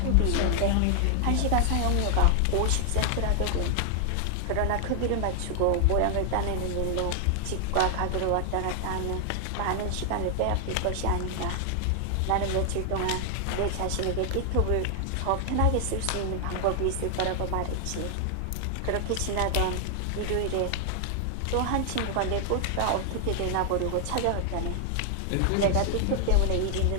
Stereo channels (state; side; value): different; both; correlation 0.00